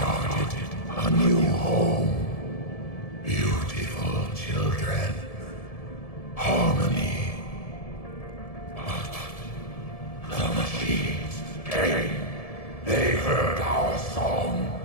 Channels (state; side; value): late; right; 1.7 ms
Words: a new home. Beautiful children. Harmony. But the machines came. They heard our song.